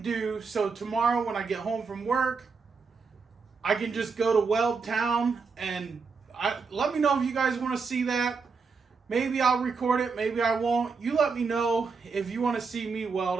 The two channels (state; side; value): quieter; left; 4.9 dB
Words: So tomorrow when I get home from work, I can just go to Weld Town and let me know if you guys want to see that. Maybe I'll record it, maybe I won't. You let me know if you want to see me